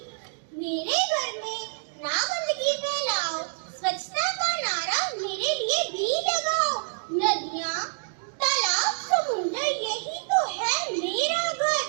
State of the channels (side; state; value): left; silent; digital silence